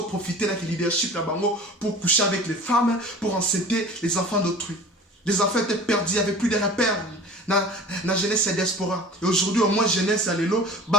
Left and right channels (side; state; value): both; normal; correlation 0.40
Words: profité de leadership là-bas pour coucher avec les femmes, pour enceinter les enfants d'autrui. Les enfants étaient perdus, il n'y avait plus de repères. Dans la jeunesse et diaspora. Et aujourd'hui, au moins, jeunesse à l'élo,